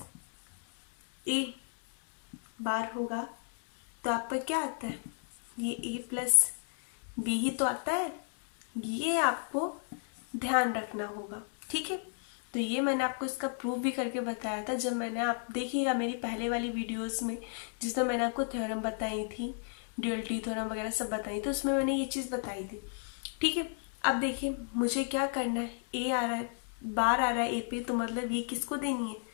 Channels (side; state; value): right; silent; 55 dB below the other